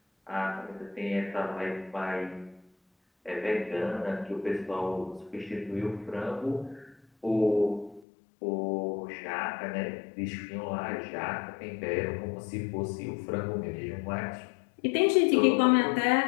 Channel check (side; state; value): right; drops out; at 8.0 s